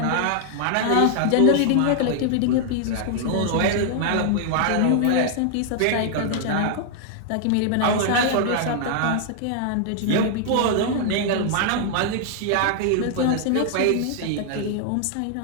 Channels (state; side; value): different; both; correlation 0.00